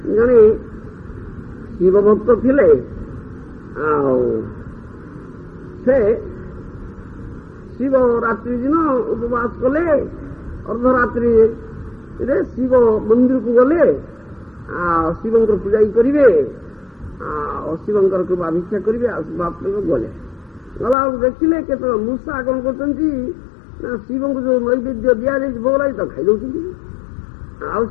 ଜଣେ ଶିବ ଭକ୍ତ ଥିଲେ। ଆଉ ସେ ଶିବ ରାତ୍ରି ଦିନ ଉପବାସ କଲେ। ଅର୍ଦ୍ଧରାତ୍ରିରେ ଶିବ ମନ୍ଦିରକୁ ଗଲେ। ଆଉ ଶିବଙ୍କର ପୂଜା କରିବେ, ଆଉ ଶିବଙ୍କର କୃପା ଭିକ୍ଷା କରିବେ। ଆଉ ଶିବାତ୍ମକ ଗଲେ ଗଲା ଦେଖିଲେ କେତେବେଳେ ମୂଷା କଣ କରୁଛନ୍ତି ନା ଶିବଙ୍କୁ ଯୋଉ ନୈବେଦ୍ୟ ଦିଆଯାଇଛି ଭୋଗ ଲାଗି ତାକୁ ଖାଇଦେଉଛନ୍ତି। ଆଉ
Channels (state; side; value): drops out; right; at 21.0 s